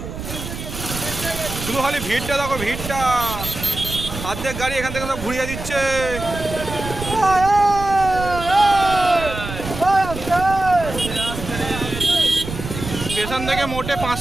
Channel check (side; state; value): right; noise; rumble, 8 dB below the sound